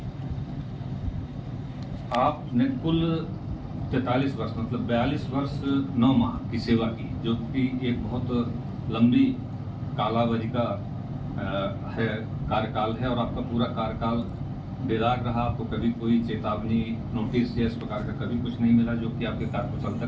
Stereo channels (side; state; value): both; identical; correlation 1.00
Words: आपने कुल 43 वर्ष मतलब 42 वर्ष 9 माह की सेवा की, जो कि एक बहुत लंबी कालावधि का है कार्यकाल है और आपका पूरा कार्यकाल बेदाग रहा। आपको कभी कोई चेतावनी नोटिस या इस प्रकार का कभी कुछ नहीं मिला, जो कि आपके कार्यकुशलता